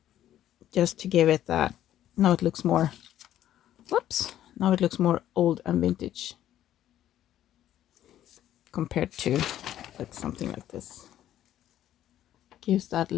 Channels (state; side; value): quieter; right; 12.1 dB